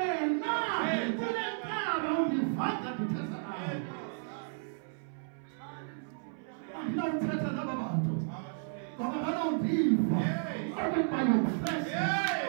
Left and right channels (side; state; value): left; silent; 56 dB below the other